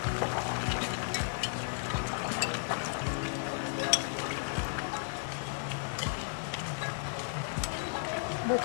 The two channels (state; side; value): silent; right; digital silence